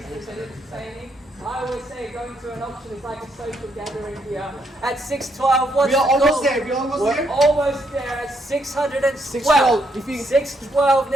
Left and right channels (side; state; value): both; normal; correlation 0.75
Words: Is it entertaining? I always say going to an auction is like a social gathering here. At 612, what's we are the almost call? there. We're Almost there at 612. 612